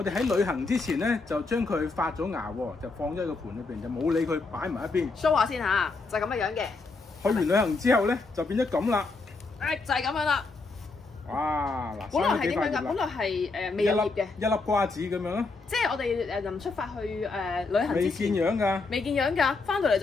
哋喺旅行之前咧，就將佢發咗芽喎，就放咗喺個盤裏邊，就冇理佢擺埋一邊。show 下先嚇，就係咁嘅樣嘅。去完旅行之後咧，就變咗咁啦。就係咁樣啦。哇！嗱，本來係點樣㗎？本來係未有葉嘅，一粒瓜子咁樣咯。即係我哋臨出發去旅行之前，未見樣㗎，未見樣㗎，翻到嚟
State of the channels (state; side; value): quieter; right; 3.8 dB